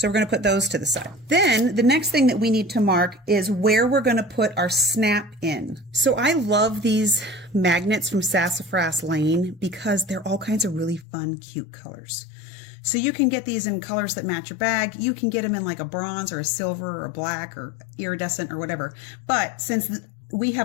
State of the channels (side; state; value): right; drops out; at 11.1 s